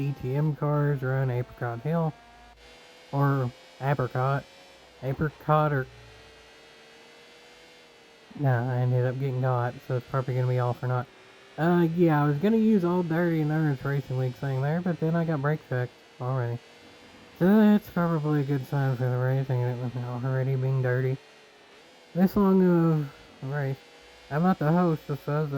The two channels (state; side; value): identical; both; correlation 1.00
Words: cars around Apricot Hill, or Apricot. Apricot or... Nah, I ended up getting got, so it's probably gonna be off or not. Yeah, I was gonna use Old Dirty Endurance Racing League thing there, but then I got brake checked already. So that's probably a good sign for the racing, and it was already being dirty. This long of a race. I'm not the host, if I was